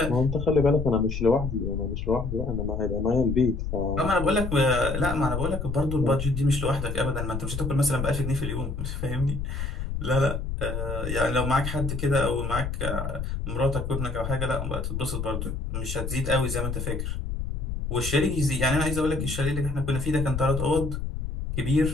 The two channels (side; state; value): left; noise; rumble, 4 dB below the sound